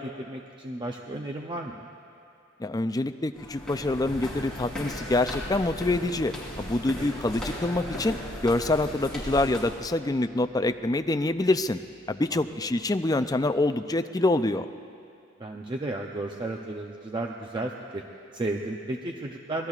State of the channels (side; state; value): both; normal; correlation 0.70